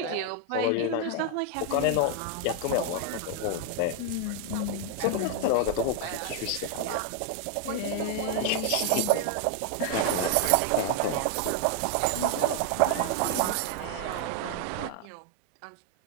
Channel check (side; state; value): both; different; correlation 0.00